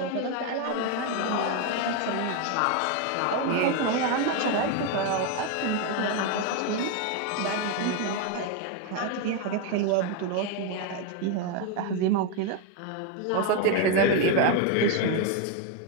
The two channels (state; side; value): different; both; correlation 0.01